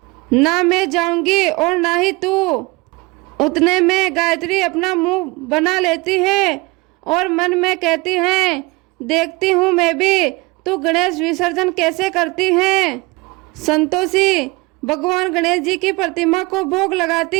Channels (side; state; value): left; quieter; 24.2 dB